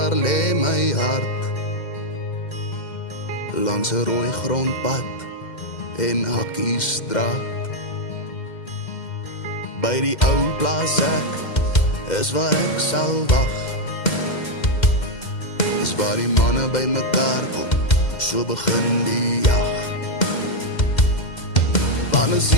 lê my hart, langs 'n rooi grondpad en Hakkiestraat. By die ou plaas ek is waar ek sal wag, is waar die manne by mekaar kom, so begin die jag. Wanneer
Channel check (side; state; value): right; late; 2.1 ms